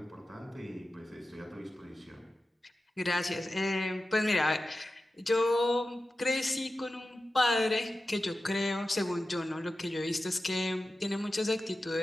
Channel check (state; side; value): normal; both; correlation 0.94